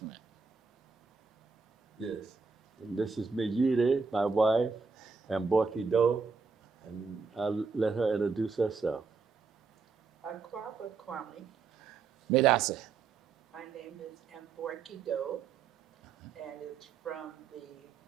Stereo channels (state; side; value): quieter; left; 5.0 dB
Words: Mine. Yes. And this is Mejire, my wife, and Borky Doe, and I'll let her introduce herself. Akwaba Kwame. Medase. My name is Mborki Doe, and it's from the